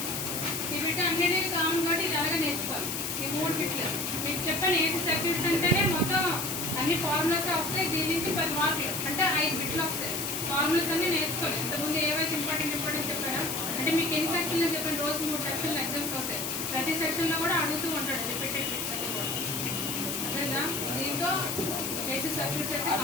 ఈ బిట్ అన్నిటికీ కామన్ కాబట్టి ఇది అలాగే నేర్చుకోవాలి. ఈ మూడు బిట్లు మీకు చెప్పాను. ఏసీ సర్క్యూట్స్ అంటేనే మొత్తం అన్ని ఫార్ములాస్ వస్తాయి. దీని నుంచి 10 మార్కులు అంటే 5 బిట్లు వస్తాయి. ఫార్ములాస్ అన్ని నేర్చుకోవాలి. ఇంతకుముందు ఏవైతే ఇంపార్టెంట్ చెప్పారో, అంటే మీకు ఎన్ని సెక్షన్లు చెప్పాను, రోజు 3 సెక్షన్లు ఎగ్జామ్స్ అవుతాయి. ప్రతి సెక్షన్లో కూడా అడుగుతూ ఉంటాడు రిపీటెడ్ బిట్స్ అన్ని కూడా, అర్థమైందా? దీంతో ఏసీ సర్క్యూట్స్ అయితే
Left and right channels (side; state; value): left; noise; hiss, 3 dB below the sound